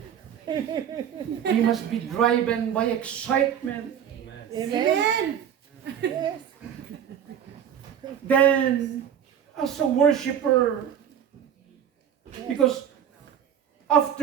We must be driven by excitement. Amen. Yes. Then, as a worshiper, because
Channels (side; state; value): left; quieter; 9.1 dB